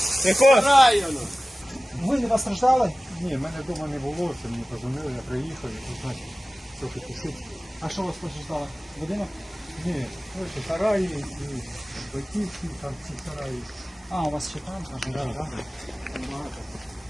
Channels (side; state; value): both; normal; correlation 0.97